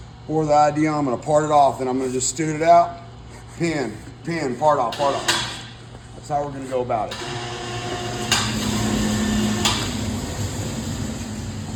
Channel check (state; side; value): identical; both; correlation 1.00